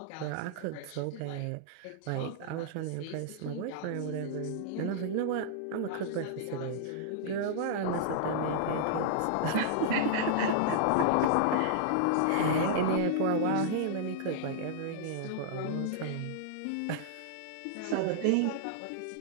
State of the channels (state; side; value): different; both; correlation -0.01